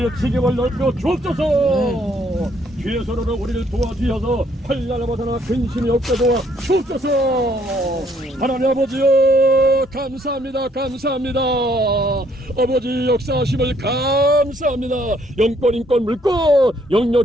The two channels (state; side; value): normal; both; correlation 0.66